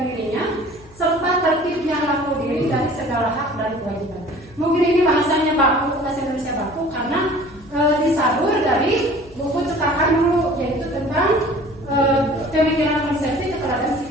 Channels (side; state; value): left; noise; hum, 25 dB below the sound